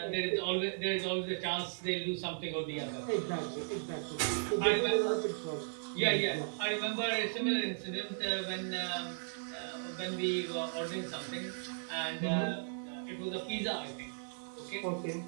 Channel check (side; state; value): left; silent; digital silence